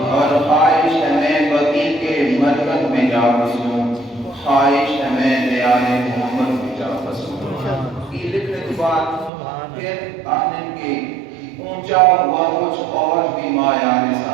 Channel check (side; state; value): left; drops out; at 9.3 s